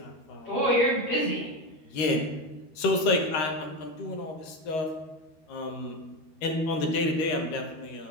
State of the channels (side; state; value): right; late; 13 ms